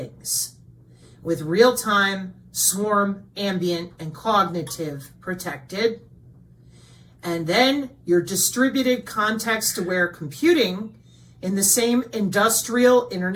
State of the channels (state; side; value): identical; both; correlation 1.00